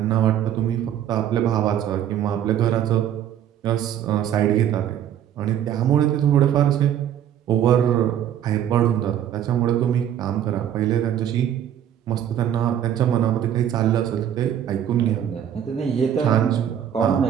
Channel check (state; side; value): quieter; left; 10.2 dB